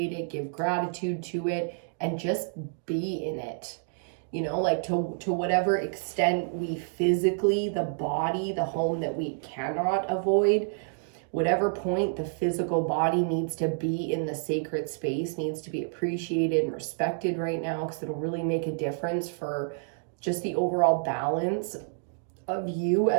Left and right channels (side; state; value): left; silent; digital silence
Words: it, give gratitude to it, and just be in it. You know, like to whatever extent we physically, the body, the home that we cannot avoid, whatever point the physical body needs to be in the sacred space, needs to be appreciated and respected right now, because it'll really make a difference for just the overall balance of you